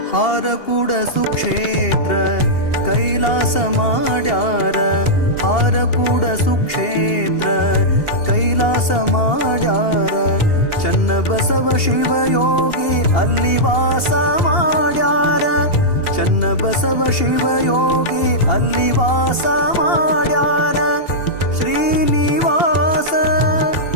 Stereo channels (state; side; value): late; right; 2.8 ms